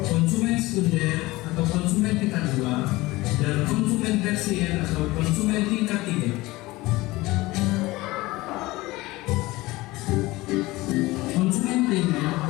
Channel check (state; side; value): quieter; right; 20.1 dB